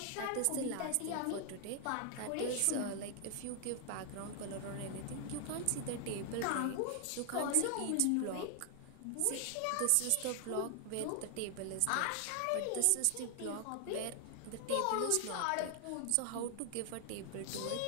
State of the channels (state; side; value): different; both; correlation 0.00